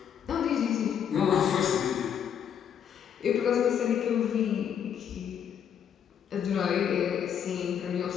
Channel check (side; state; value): right; quieter; 8.5 dB